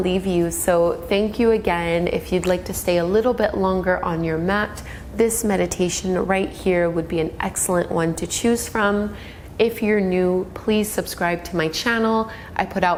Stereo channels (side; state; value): both; identical; correlation 1.00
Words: you. So thank you again. If you'd like to stay a little bit longer on your mat, this meditation right here would be an excellent one to choose from. If you're new, please subscribe to my channel. I put